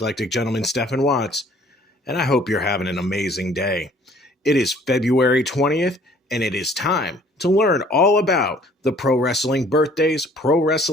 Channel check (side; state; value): both; normal; correlation 0.56